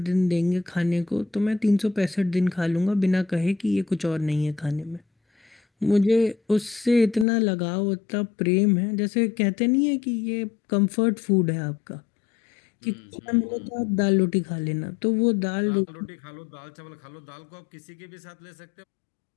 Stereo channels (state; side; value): drops out; right; at 7.2 s